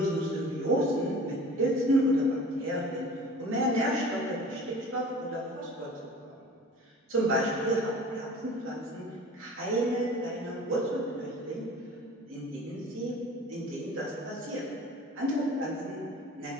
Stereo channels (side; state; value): both; normal; correlation 0.43